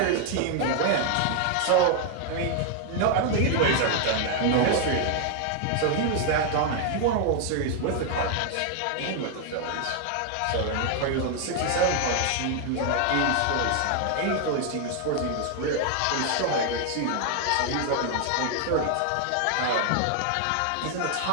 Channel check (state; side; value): different; both; correlation 0.00